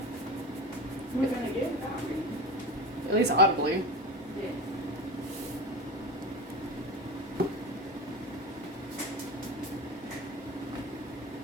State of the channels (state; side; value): normal; both; correlation 0.27